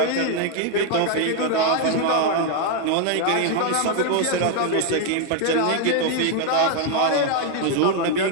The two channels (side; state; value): both; different; correlation 0.00